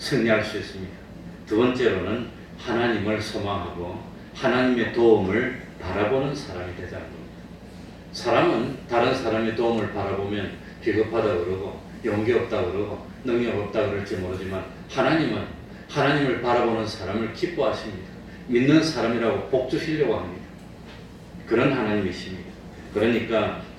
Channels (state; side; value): identical; both; correlation 1.00